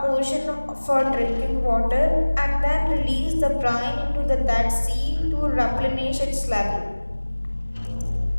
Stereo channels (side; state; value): both; inverted; correlation -1.00